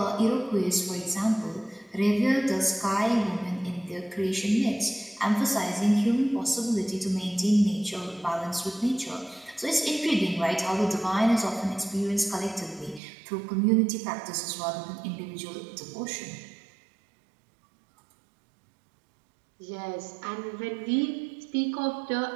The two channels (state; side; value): drops out; left; at 13.0 s